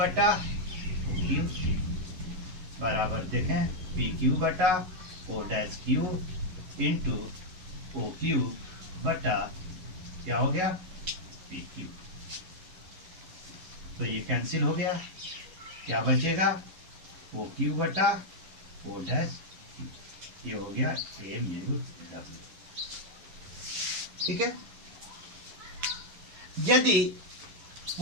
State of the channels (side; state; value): left; late; 11 ms